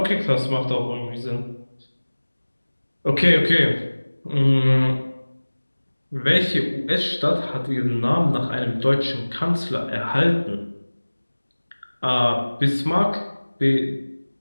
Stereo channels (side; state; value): both; inverted; correlation -1.00